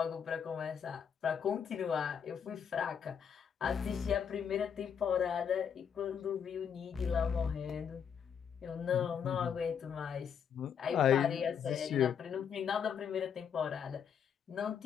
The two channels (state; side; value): quieter; right; 7.6 dB